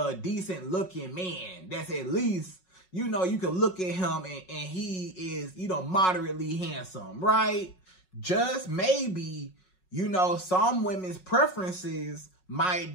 decent looking man. That's at least, you know, you can look at him and he is, you know, moderately handsome, right? Just maybe, you know, some women's preferences might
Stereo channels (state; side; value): late; right; 5.4 ms